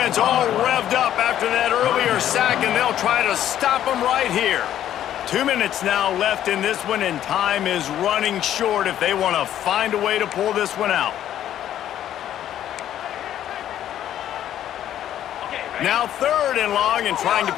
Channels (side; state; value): right; quieter; 11.4 dB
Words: all revved up after that earlier sack, and they'll try to stop him right here. 2 minutes now left in this one, and time is running short if they want to find a way to pull this one out. Now third and long, and trying to